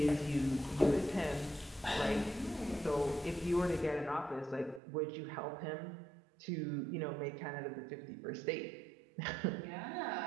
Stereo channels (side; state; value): left; drops out; at 4.8 s